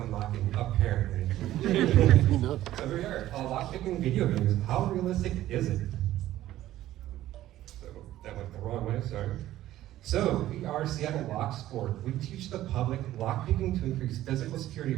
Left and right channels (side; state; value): left; quieter; 14.1 dB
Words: unlocking, apparently. So here we are, lockpicking video games. How realistic is it? So that went the wrong way, sorry. So we are Seattle Locksport. We teach the public lockpicking to increase physical security